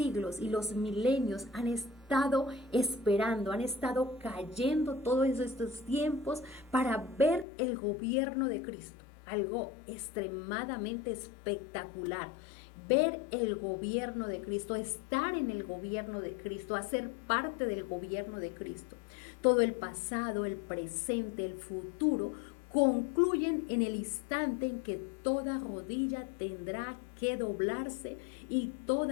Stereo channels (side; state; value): right; drops out; at 7.5 s